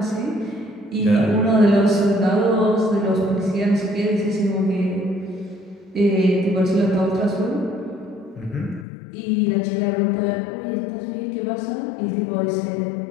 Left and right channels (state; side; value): drops out; right; at 8.8 s